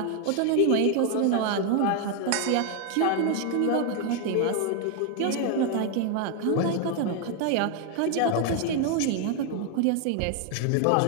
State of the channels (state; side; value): different; both; correlation 0.01